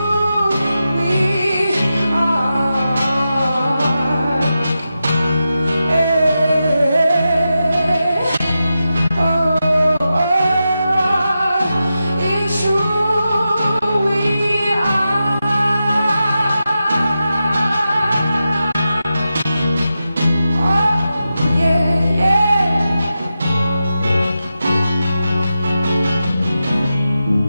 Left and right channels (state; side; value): inverted; both; correlation -0.90